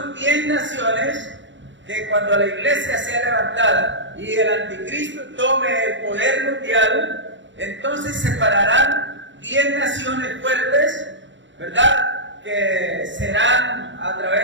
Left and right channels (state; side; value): late; left; 0.54 ms